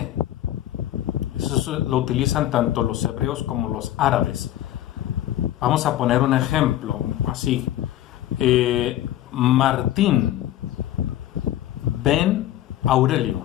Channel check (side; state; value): right; quieter; 13.3 dB